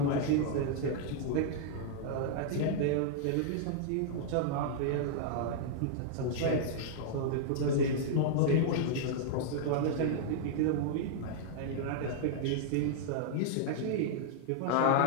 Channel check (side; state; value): both; different; correlation -0.01